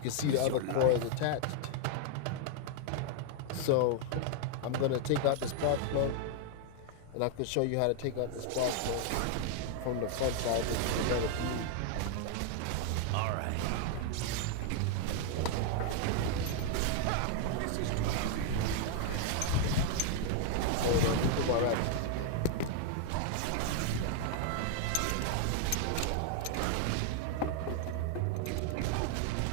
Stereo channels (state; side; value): different; both; correlation 0.00